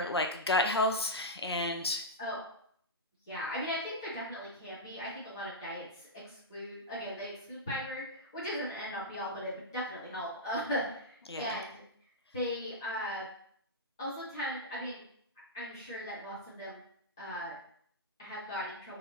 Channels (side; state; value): both; normal; correlation -0.09